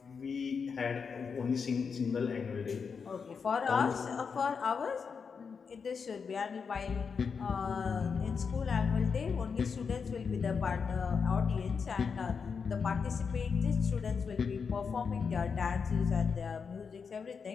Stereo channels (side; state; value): right; quieter; 5.8 dB